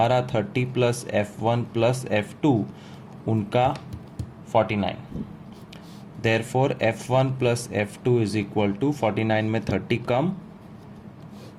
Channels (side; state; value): both; identical; correlation 1.00